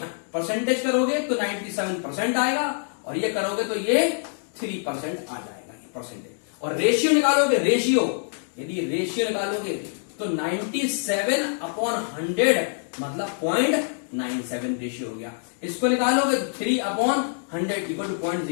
परसेंटेज करोगे तो 97% आएगा, और ये करोगे तो ये 3% आ जाएगा ये परसेंटेज। और रेशियो निकालोगे, रेशियो यदि रेशियो निकालोगे तो 97/100 मतलब 0.97 रेशियो हो गया। इसको निकालोगे तो 3/100 इक्वल टू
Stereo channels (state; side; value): silent; right; digital silence